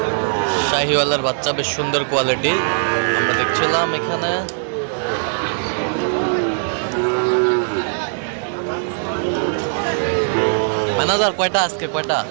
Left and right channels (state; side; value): silent; left; digital silence